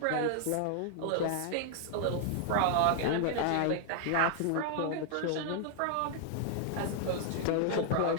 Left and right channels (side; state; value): both; different; correlation -0.01